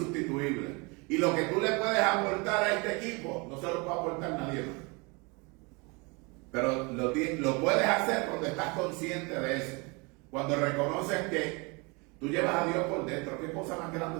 Y lo que tú le puedes aportar a este equipo, no se lo puede aportar nadie más. Pero lo puedes hacer cuando estás consciente de eso. Cuando reconoces que tú llevas a Dios por dentro, ¿qué cosa más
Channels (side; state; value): left; quieter; 28.9 dB